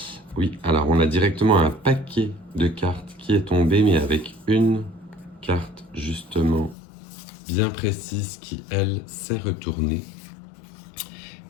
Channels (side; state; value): right; drops out; at 6.8 s